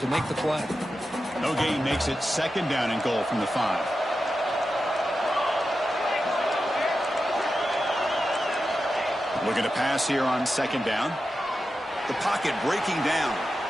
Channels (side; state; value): both; normal; correlation 0.91